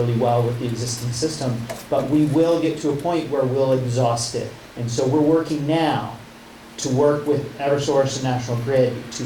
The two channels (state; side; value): identical; both; correlation 1.00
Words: well with the existing system, but we will get to a point where we'll exhaust it. And so we're working now to work with Eversource and National Grid